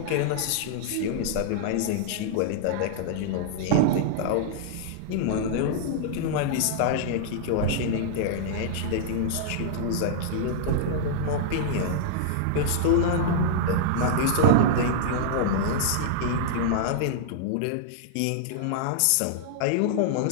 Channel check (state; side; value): different; both; correlation -0.01